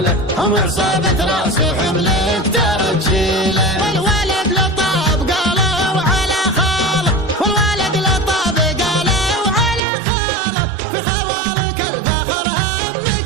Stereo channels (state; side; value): drops out; left; at 9.8 s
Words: هم عصابة راس حملك ترجيله. والولد لطاب قالوا على خاله، والولد لطاب قالوا على خاله، في خوالك الفخر